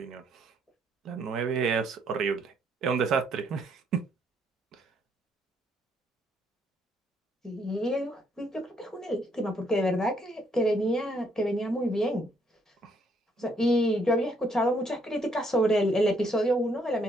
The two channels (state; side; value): normal; both; correlation 0.70